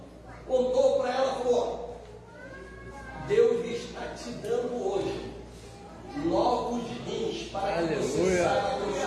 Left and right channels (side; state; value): both; identical; correlation 1.00